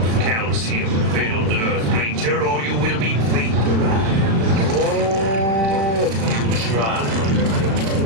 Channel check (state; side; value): late; left; 36 ms